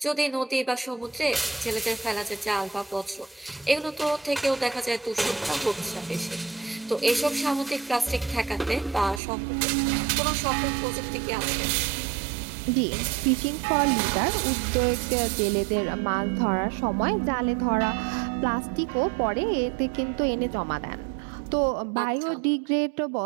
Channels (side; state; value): left; drops out; at 9.2 s